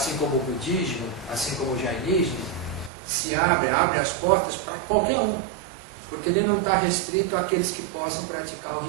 como o budismo, assim como o jainismo, se abre as portas para qualquer um, porque ele não está restrito àqueles que possam praticar o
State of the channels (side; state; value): left; drops out; at 2.9 s